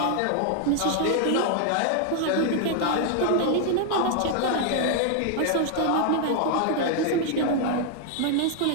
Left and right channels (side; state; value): both; different; correlation 0.00